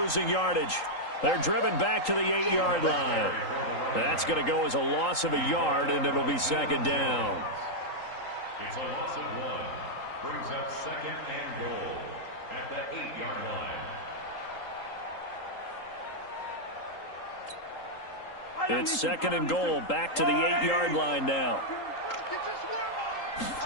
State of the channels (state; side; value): late; right; 3.8 ms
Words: yardage. They're driven back to the 8-yard line. That's going to go as a loss of a yard, and it'll be 2nd down. It's a loss of 1. Brings up 2nd and goal at the 8-yard line. It's 2nd and goal, back to the 8-yard line now.